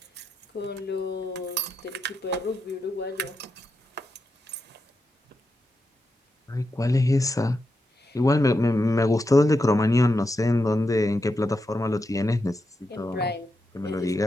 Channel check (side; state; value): both; normal; correlation 0.86